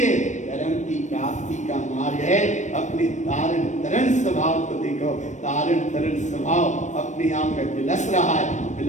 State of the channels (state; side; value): late; right; 0.35 ms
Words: धर्म की प्राप्ति का मार्ग है अपने तारण तरण स्वभाव को देखो। तारण तरण स्वभाव अपने आप में विलस रहा है,